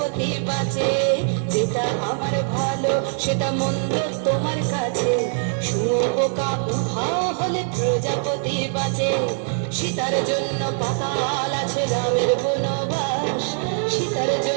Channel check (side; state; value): left; silent; 59 dB below the other